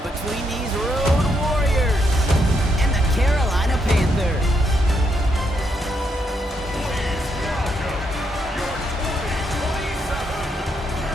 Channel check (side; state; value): both; normal; correlation 0.78